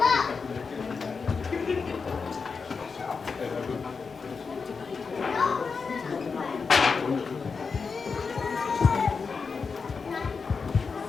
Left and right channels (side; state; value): right; quieter; 5.1 dB